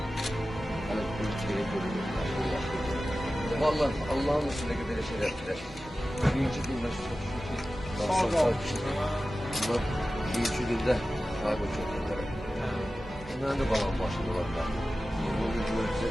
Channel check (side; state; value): both; normal; correlation 0.95